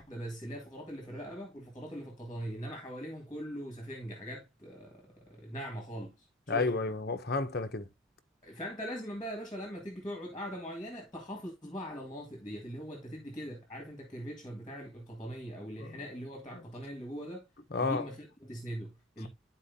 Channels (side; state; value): both; normal; correlation 0.34